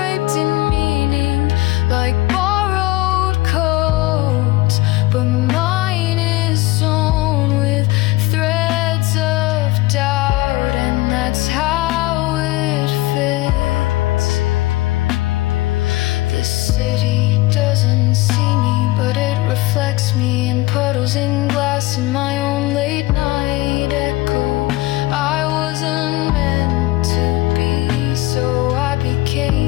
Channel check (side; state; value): right; quieter; 18.9 dB